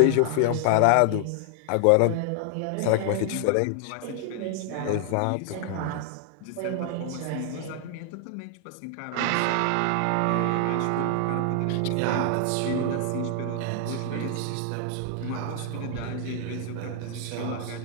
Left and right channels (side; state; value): both; different; correlation 0.00